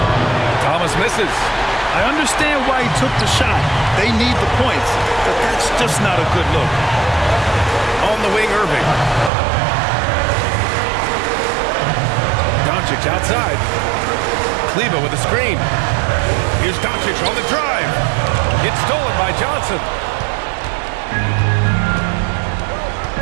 Thomas misses. I understand why he took the shot. They need the points, but that's just not a good look. On the wing, Irving. Doncic outside. Kleber with a screen. Here's Doncic on the drive. It's stolen by Johnson.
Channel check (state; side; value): drops out; left; at 9.3 s